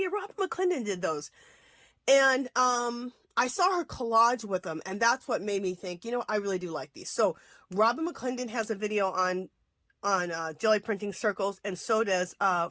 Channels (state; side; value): identical; both; correlation 1.00